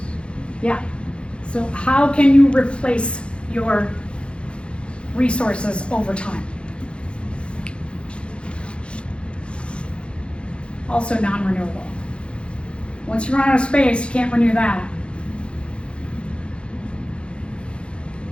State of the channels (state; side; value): late; right; 0.057 ms